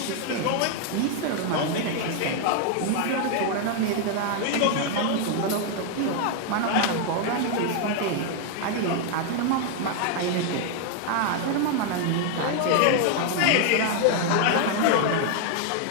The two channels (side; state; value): both; different; correlation 0.00